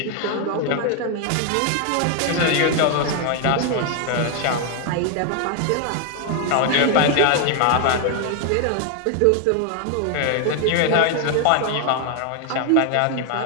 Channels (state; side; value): different; both; correlation 0.00